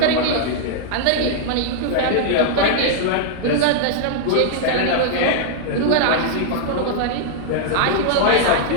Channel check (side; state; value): both; different; correlation -0.01